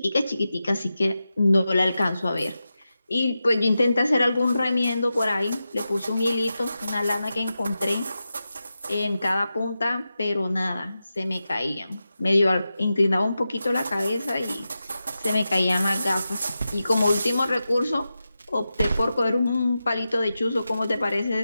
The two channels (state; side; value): inverted; both; correlation -0.91